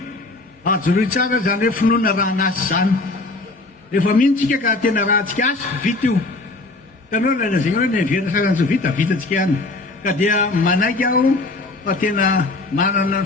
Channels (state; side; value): quieter; right; 3.1 dB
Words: tsara zany hoe finoana raha anasy zany rehefa mihintsika ka tena raha antsika asy vita io tanao lazay hoe ny verina sasany tsy vitatsika ihany ka dia manaiky aho fa tena manana ny